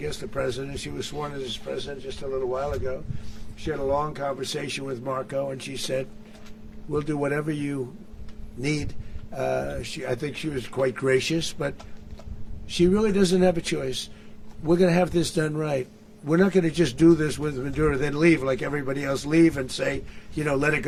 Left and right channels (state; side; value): identical; both; correlation 1.00